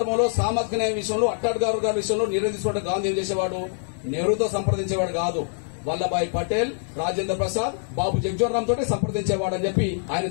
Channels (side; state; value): right; silent; digital silence